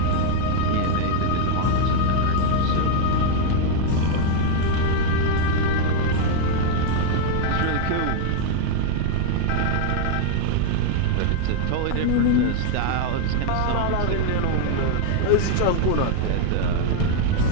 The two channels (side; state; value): both; different; correlation 0.00